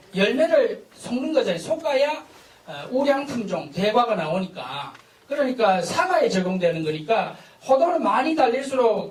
열매를 섞는 거잖아요. 솎아야 우량품종, 대과가 나오니까. 그러니까 사과에 적용되는 거니까 호도는 많이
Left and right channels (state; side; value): identical; both; correlation 1.00